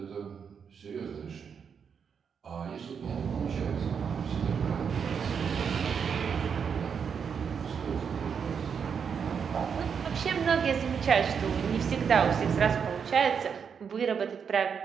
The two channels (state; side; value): quieter; left; 6.8 dB